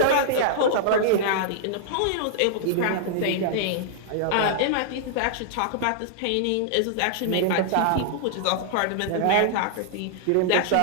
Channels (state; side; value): different; both; correlation -0.01